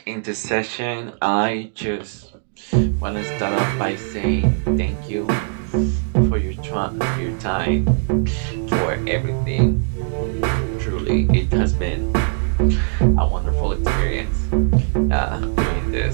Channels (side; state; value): left; silent; digital silence